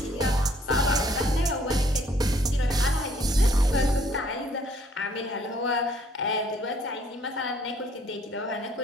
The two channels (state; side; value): normal; both; correlation 0.63